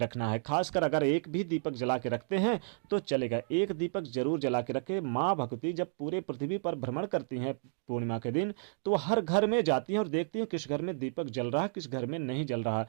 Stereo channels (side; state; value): left; silent; digital silence